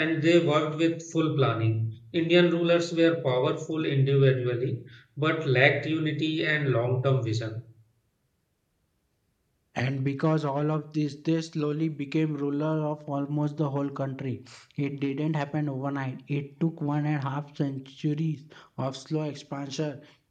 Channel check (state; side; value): identical; both; correlation 1.00